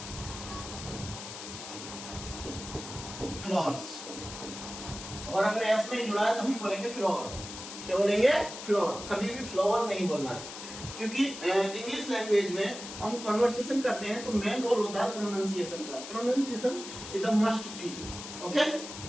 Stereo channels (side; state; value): left; noise; hiss, 10 dB below the sound